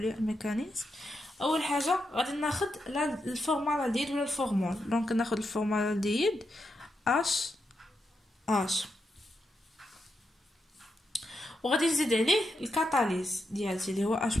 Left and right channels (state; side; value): normal; both; correlation 0.85